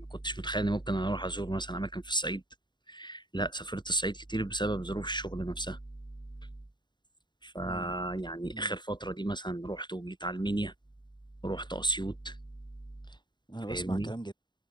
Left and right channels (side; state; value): right; late; 0.22 ms